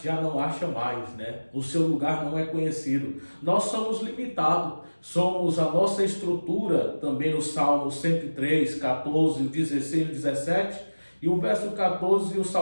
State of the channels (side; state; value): both; inverted; correlation -1.00